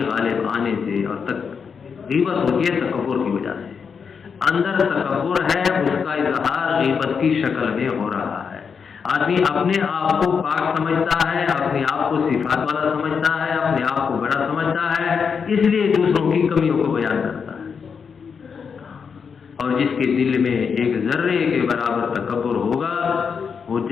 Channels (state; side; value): quieter; right; 6.2 dB